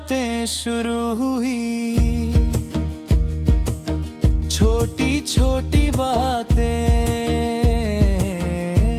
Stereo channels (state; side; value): identical; both; correlation 1.00